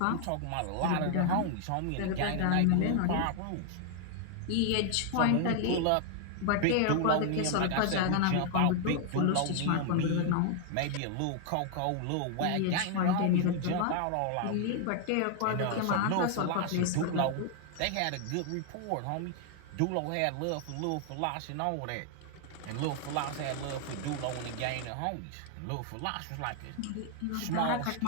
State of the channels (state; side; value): different; both; correlation 0.00